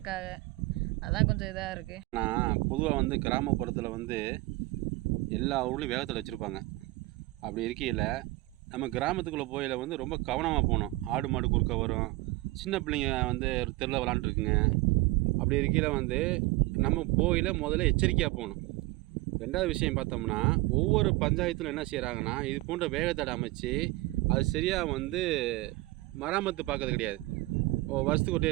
அதான் கொஞ்சம் இதாக இருக்குது. நான் பொதுவாக கிராமப்புறத்தில் எல்லா ஊர்லேயும் வேகத்தில் வச்சுருப்பாங்க. அப்படி இருக்கையில் நம்ம கிராமத்துக்குள்ளே போயில் ரொம்ப கவனமாக போகணும். ஆடு மாடு குறுக்க வரும், சின்ன பிள்ளைங்க தெருவில் விளாண்டுருக்குங்க. அப்படி இருக்கையில் நம்ம போயில் முதல்ல எச்சரிக்கையாக போகணும். ரெண்டாவது விஷயம் பார்த்தோம்னா, ஒவ்வொரு பஞ்சாயத்தில் என்ன செய்கிறாங்கன்னா, இது போன்ற வேகத்தடை அமைச்சு அது சரியாக மராமத்து பார்க்கறது கிடையாது. வருஷத்துக்கு ஒரு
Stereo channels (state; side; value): quieter; left; 20.8 dB